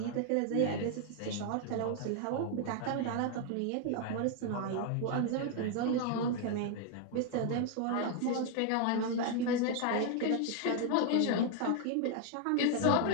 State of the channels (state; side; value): different; both; correlation 0.00